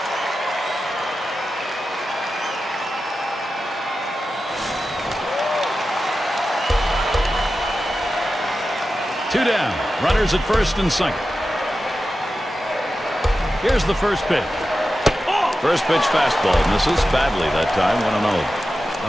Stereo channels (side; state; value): both; normal; correlation 0.92